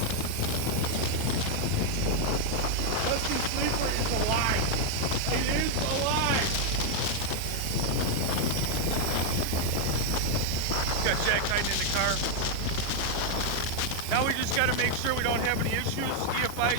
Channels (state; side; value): different; both; correlation 0.00